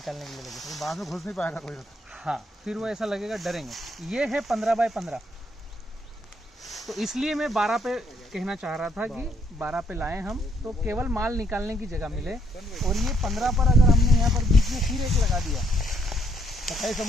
के लिए लगेगा। बाद में घुस नहीं पाएगा कोई। हाँ, फिर वो ऐसा लगेगा डरेंगे। ये है 15 बाय 15, तो इसलिए मैं 12 पे कहना चाह रहा था कि 12 पे लाएं हम, तो केवल माल निकालने की जगह मिले। और ये 15 पर अगर हमने यहाँ पर बीच में फिर एक लगा दिया, कटाई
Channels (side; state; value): both; normal; correlation 0.71